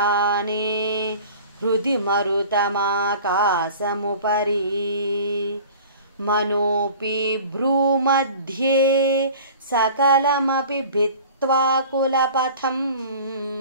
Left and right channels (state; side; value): inverted; both; correlation -0.43